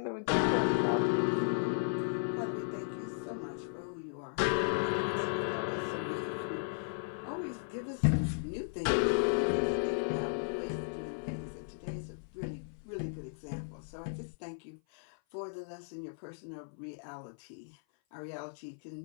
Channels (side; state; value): right; silent; 54 dB below the other